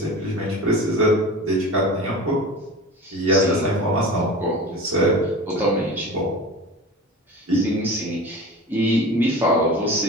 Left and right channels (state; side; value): normal; both; correlation 0.34